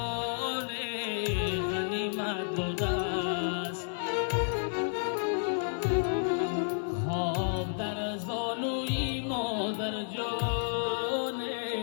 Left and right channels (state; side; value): silent; right; 57 dB below the other